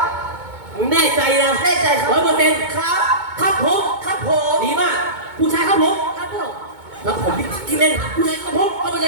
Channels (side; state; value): left; late; 2.2 ms